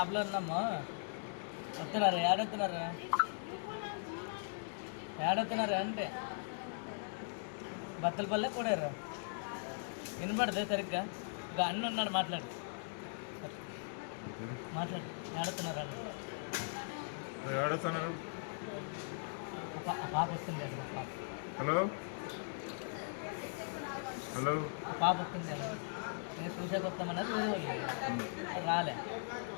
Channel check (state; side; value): silent; right; digital silence